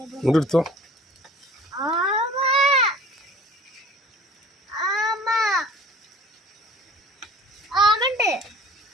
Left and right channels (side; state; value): both; normal; correlation 0.47